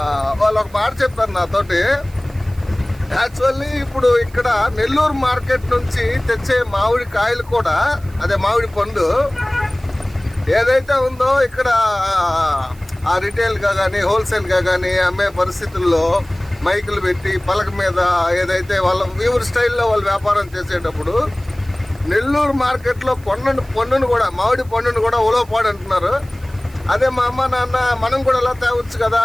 వాళ్ళు ఒక మాట చెప్పారు నాతోటి. యాక్చువల్లీ ఇప్పుడు ఇక్కడ నెల్లూరు మార్కెట్ నుంచి తెచ్చే మామిడి కాయలు కూడా, అదే మామిడి పండు ఏదైతే ఉందో ఇక్కడ ఆ రిటైల్గా కానీ హోల్సేల్గా కానీ అమ్మే పరిస్థితుల్లో మైకులు పెట్టి పలక మీద ఏదైతే వాళ్ళ వీవర్ స్టైల్లో వాళ్ళు వ్యాపారం చేసేటప్పుడు నెల్లూరు మార్కెట్లో పండును కూడా, మామిడి పండును కూడా ఉలవపాడు అంటున్నారు. అదే మా అమ్మ నాన్న మనం కూడా ఎలా తేవచ్చు కదా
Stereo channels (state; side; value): noise; right; hiss, 26 dB below the sound